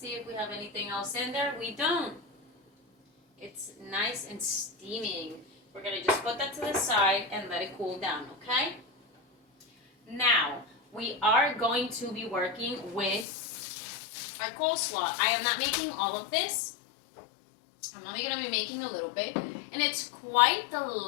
if we have anything else in there. We don't. It's nice and steaming. We're gonna just put that to the side and let it cool down, okay? Now, we are going to be working with our coleslaw. I am not making all of this. I'm only gonna be making a little bit. And it's quite the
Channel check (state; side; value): drops out; right; at 13.2 s